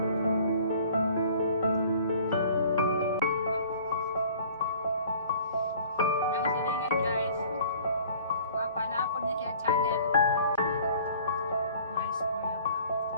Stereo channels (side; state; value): both; inverted; correlation -0.50